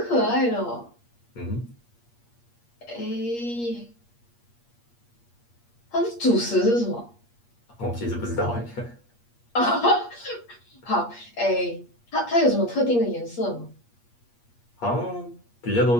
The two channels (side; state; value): right; late; 8.5 ms